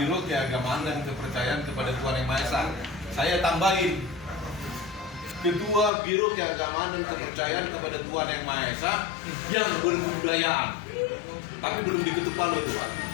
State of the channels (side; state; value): right; drops out; at 5.9 s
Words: Keagamaan dan Kepercayaan kepada Tuhan Yang Maha Esa. Saya tambahin, Ketua Biro Keagamaan dan Kepercayaan kepada Tuhan Yang Maha Esa yang berkebudayaan. Tapi belum diketuk palu itu Pak,